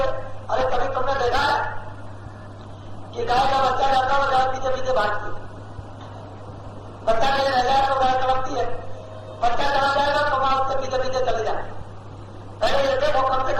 अरे कभी तुमने देखा है कि गाय का बच्चा रहता है गाय पीछे पीछे भागती है, बच्चा कहीं रह जाए तो गाय कलपती है, बच्चा चला जाएगा तो वहां उसके पीछे पीछे चले जाए। पहले ये देखो कम से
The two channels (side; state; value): both; identical; correlation 1.00